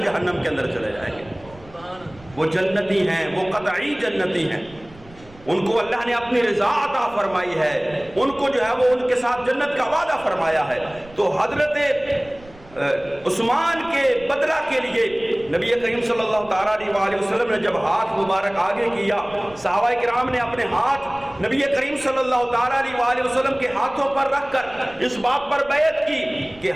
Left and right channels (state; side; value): noise; right; rumble, 22 dB below the sound